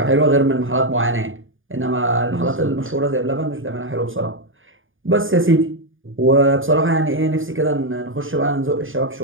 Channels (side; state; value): left; late; 0.58 ms